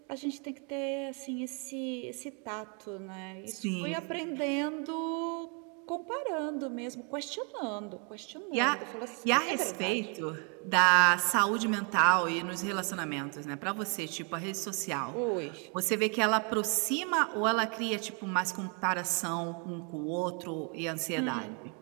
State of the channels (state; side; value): quieter; left; 36.8 dB